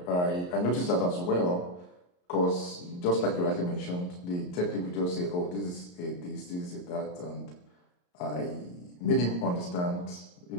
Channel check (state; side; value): late; right; 34 ms